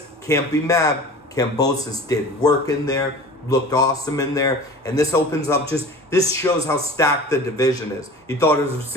can't be mad. Kambosas did work in there, looked awesome in there, and this opens up this shows how stacked the division is. You thought it was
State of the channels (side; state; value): both; normal; correlation 0.39